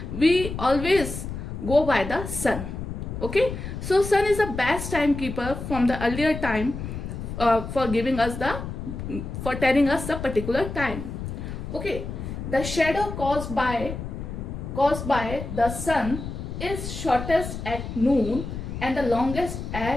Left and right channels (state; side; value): noise; left; rumble, 7 dB below the sound